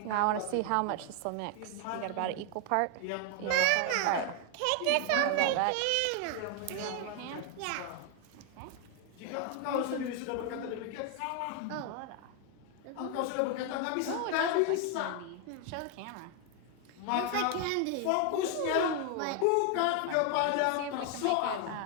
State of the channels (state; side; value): different; both; correlation 0.00